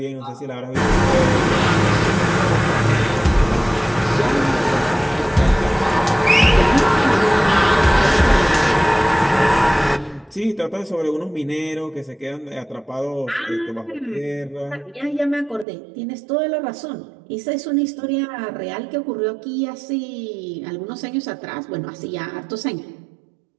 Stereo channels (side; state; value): left; drops out; at 15.7 s